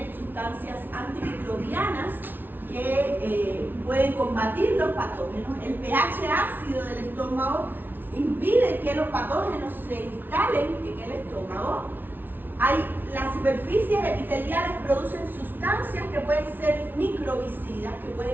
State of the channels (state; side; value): late; left; 0.094 ms